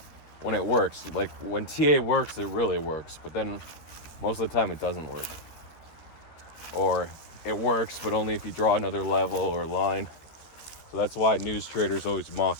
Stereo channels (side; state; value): right; late; 13 ms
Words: when it works. Like, when TA works, it really works. But then most of the time, it doesn't work. Or it works, but only if you draw another level or line. So that's why news traders always mock